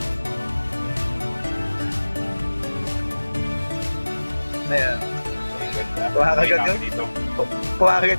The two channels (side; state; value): both; inverted; correlation -1.00